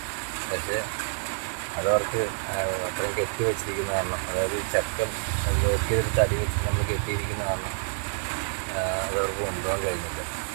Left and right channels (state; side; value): silent; left; 60 dB below the other